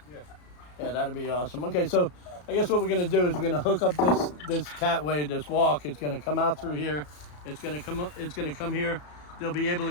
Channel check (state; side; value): late; right; 34 ms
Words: Yeah. Yeah, that'd be awesome. Okay, so I guess what we're gonna do is we're gonna hook up this catway, this walk. It's gonna come out through here. It's gonna come up. It's gonna come here. They'll be able